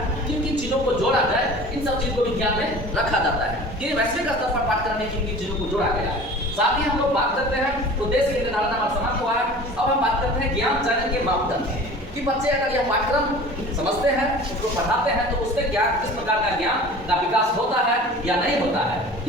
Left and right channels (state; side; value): normal; both; correlation 0.41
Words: किन किन चीजों को जोड़ा जाए, इन सब चीजों को भी ध्यान में रखा जाता है कि वैश्विक स्तर पर पाठ्यक्रम में किन किन चीजों को जोड़ा गया है। साथ ही हम लोग बात करते हैं उद्देश्य के निर्धारण हमारा समाप्त हुआ है। अब हम बात करते हैं ज्ञान चयन के मापदंड कि बच्चे अगर यह पाठ्यक्रम समझते हैं, उसको पढ़ाते हैं तो उससे क्या किस प्रकार का ज्ञान का विकास होता है या नहीं होता है,